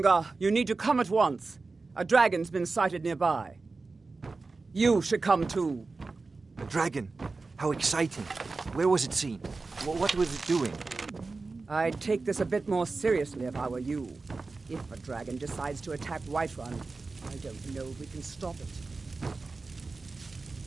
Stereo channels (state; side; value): quieter; left; 3.9 dB